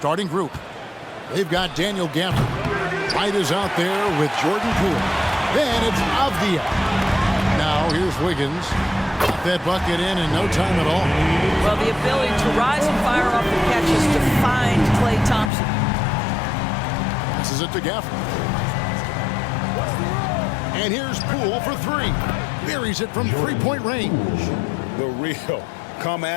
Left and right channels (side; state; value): right; drops out; at 15.5 s